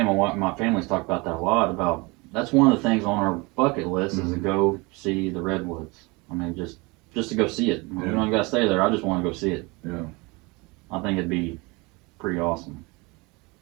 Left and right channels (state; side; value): quieter; left; 26.1 dB